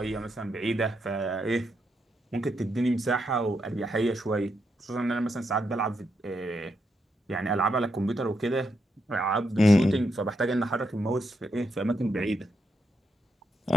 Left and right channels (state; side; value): normal; both; correlation 0.81